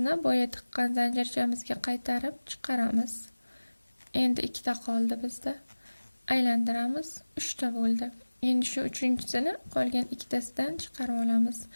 boya tiqqan zanjirchamizga qaytarib chiqaramiz. Endi ikkita qoldi bizda. Aylantiramiz, 3 ta bo'ldi. Endi shu uchinchisini qolgan ikkitasidan chiqarib olamiz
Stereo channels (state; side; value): inverted; both; correlation -1.00